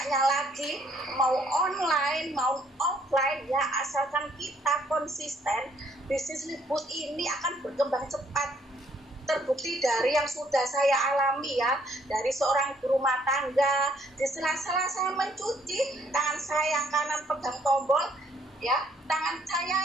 lagi, mau online mau offline ya, asalkan kita konsisten, bisnis Liftwood ini akan berkembang cepat. Terbukti dari yang sudah saya alami ya, dari seorang ibu rumah tangga, di sela-sela saya mencuci, tangan saya yang kanan pegang tombol ya, tangan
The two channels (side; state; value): both; normal; correlation 0.66